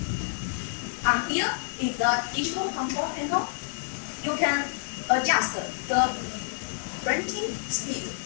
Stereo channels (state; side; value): silent; right; 59 dB below the other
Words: And here is the digital control panel. You can adjust the printing speed